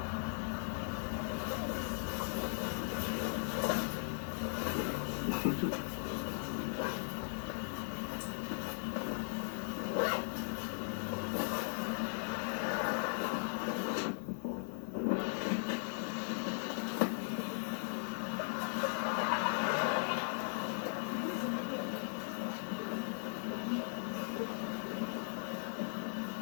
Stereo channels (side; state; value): right; silent; 52 dB below the other